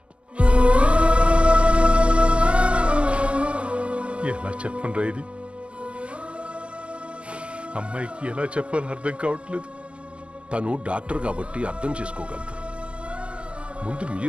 ఎలా చెప్పనురా ఇది? అమ్మాయికి ఎలా చెప్పాలో అర్థం కావట్లేదు. తను డాక్టర్ కాబట్టి అర్థం చేసుకోగలదు. ముందు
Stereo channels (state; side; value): late; left; 0.055 ms